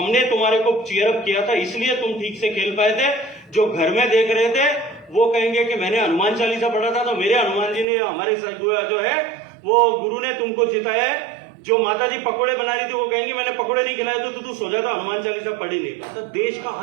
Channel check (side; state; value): left; drops out; at 7.9 s